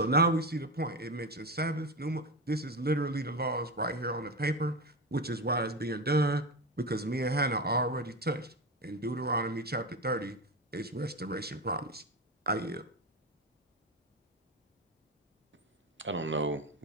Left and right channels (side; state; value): both; normal; correlation 0.19